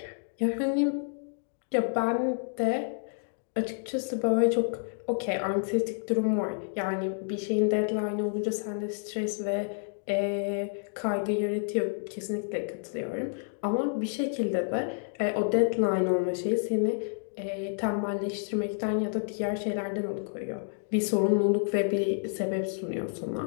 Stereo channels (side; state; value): right; silent; digital silence